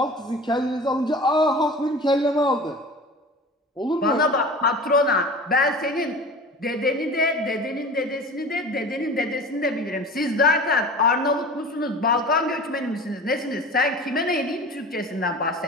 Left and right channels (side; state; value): both; normal; correlation 0.37